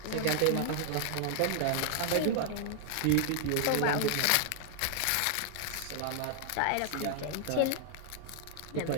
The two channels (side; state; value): both; different; correlation 0.00